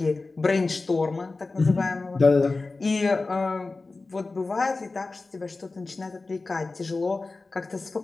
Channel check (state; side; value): quieter; right; 3.6 dB